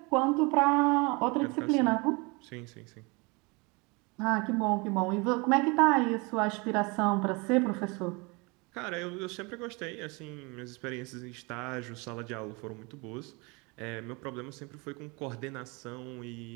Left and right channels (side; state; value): left; quieter; 28.2 dB